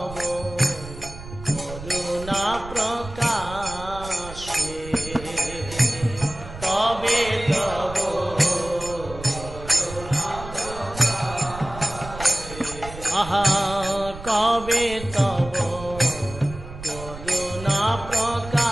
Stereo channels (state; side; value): noise; right; rumble, 13 dB below the sound